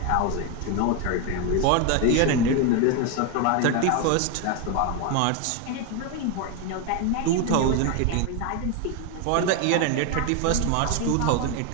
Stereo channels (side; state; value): both; different; correlation 0.02